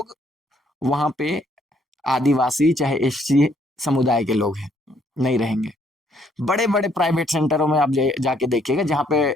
वहां पे आदिवासी, चाहे एससी समुदाय के लोग हैं, नहीं रहेंगे। बड़े बड़े प्राइवेट सेंटरों में आप जाके देखिएगा, जहां पे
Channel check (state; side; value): normal; both; correlation 0.68